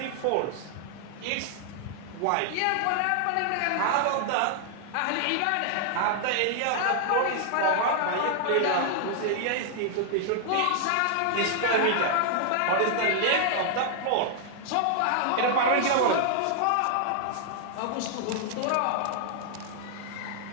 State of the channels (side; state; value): both; different; correlation -0.01